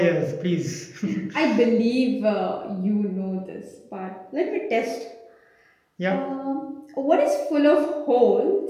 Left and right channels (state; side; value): identical; both; correlation 1.00